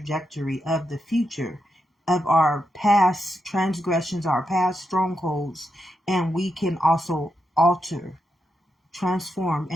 of the future of our past transgressions, our past strongholds, and we can also alter, transform,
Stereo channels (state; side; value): normal; both; correlation 0.85